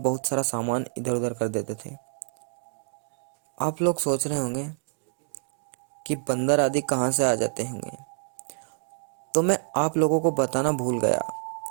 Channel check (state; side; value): silent; left; 60 dB below the other